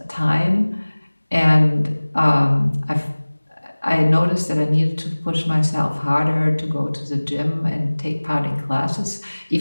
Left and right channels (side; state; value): both; inverted; correlation -1.00